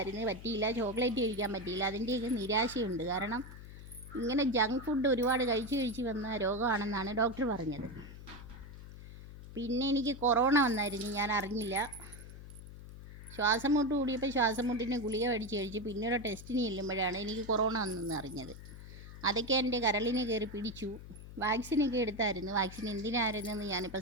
പറ്റിയില്ല. ചോക്ലേറ്റ് കഴിക്കാൻ പറ്റിയില്ല. അതിൻ്റെയൊക്കെ നിരാശയുണ്ട്. കാരണം ഇങ്ങനെ ജങ്ക് ഫുഡ് ഒരുപാട് കഴിച്ച് വന്ന രോഗമാണെന്നാണ് ഡോക്ടർ പറഞ്ഞത്. പിന്നെ എനിക്ക് കൊറോണ വന്നായിരുന്നു, ഞാൻ അറിഞ്ഞില്ല. ശ്വാസം മുട്ട് കൂടിയപ്പോൾ ശ്വാസം മുട്ടിന് ഗുളിക മേടിച്ച് കഴിച്ച് പിന്നീട് ടെസ്റ്റിന് ചെല്ലുമ്പോഴാണ് എനിക്ക് കൊറോണ വന്നെന്ന് അറിഞ്ഞത്. അതൊക്കെ എൻ്റെ കരളിന് കയറി പിടിച്ചു. വാക്സിനൊക്കെ എടുത്തായിരുന്നു. വാക്സിൻ എന്തിനായിരുന്നെന്ന്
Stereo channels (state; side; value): noise; left; hum, 14 dB below the sound